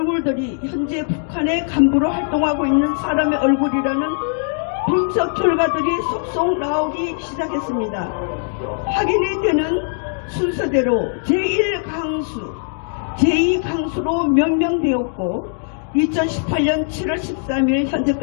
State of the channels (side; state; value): right; silent; 65 dB below the other